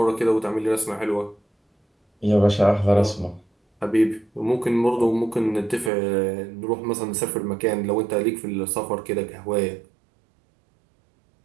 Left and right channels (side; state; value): left; drops out; at 5.9 s